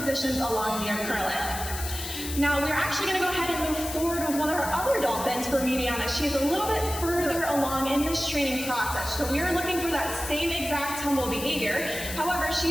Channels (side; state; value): left; noise; hiss, 8 dB below the sound